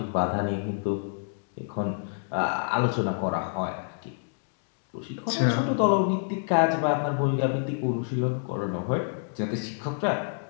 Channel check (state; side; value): silent; right; digital silence